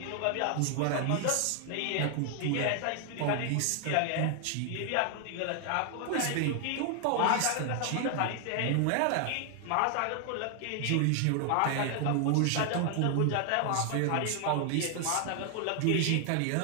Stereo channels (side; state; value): both; different; correlation 0.00